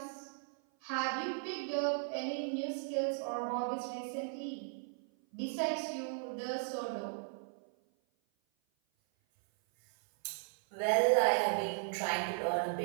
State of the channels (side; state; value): left; silent; 53 dB below the other